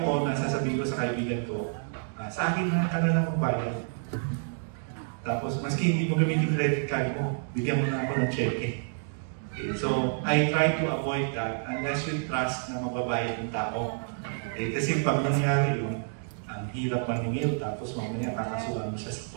ko na sasabihin ko sa kaibigan ko, sa akin na ka na magbayad. Tapos, maski hindi mo gamitin credit card mo, bigyan mo na ako ng cheque. Okay, so, I try to avoid that unless you trust na mababayad ng tao. Okay, kasi pag nangyari yun, ang hirap maningil, tapos mamaya kakasuhan mo siya sa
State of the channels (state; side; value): silent; left; digital silence